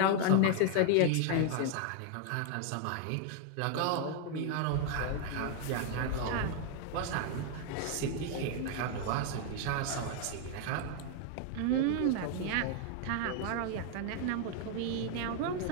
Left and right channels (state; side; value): different; both; correlation 0.00